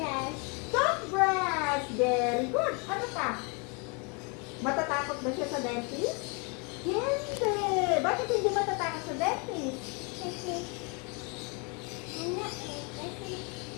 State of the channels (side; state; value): right; quieter; 33.4 dB